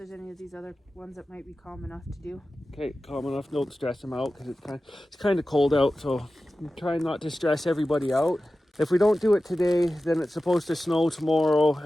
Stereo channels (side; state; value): both; normal; correlation 0.94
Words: any of these other ones that might be calm enough to do. Okay, calm enough. Don't stress them out because it's kind of cold out, so I'm trying not to stress everybody out. If we don't do it today, then it's supposed to snow tomorrow,